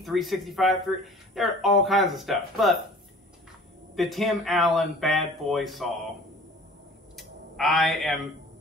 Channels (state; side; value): normal; both; correlation 0.46